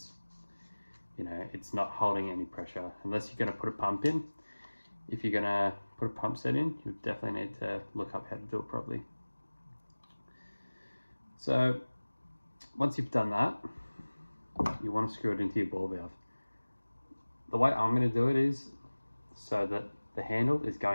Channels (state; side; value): inverted; both; correlation -1.00